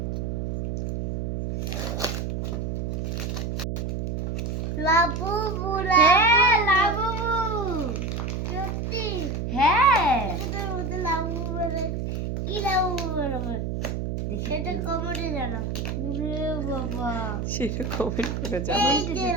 লাবুবু, হ্যাঁ লাবু, সত্যি হ্যাঁ এটার মধ্যে লাবুবু বেরোয়। কি লাবুবু বেরোবে? দেখি সেটা কি। কমেন্টে জানাও। ওরে বাবা, সেটা কমেন্ট করে জানাও। এই যে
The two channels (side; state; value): right; noise; hum, 2 dB below the sound